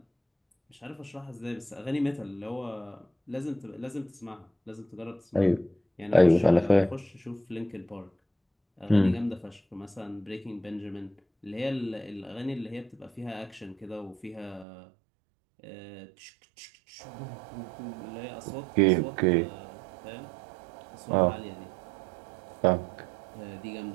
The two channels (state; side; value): drops out; left; at 14.7 s